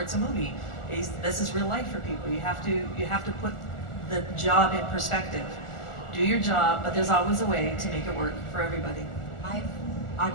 a movie. This is real life for people. You have to put the job in perspective. Do your job, but there's always a way to make it work for everybody. I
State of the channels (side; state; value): right; late; 1.4 ms